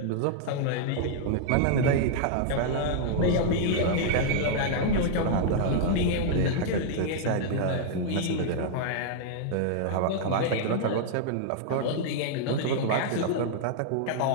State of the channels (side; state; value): both; different; correlation -0.01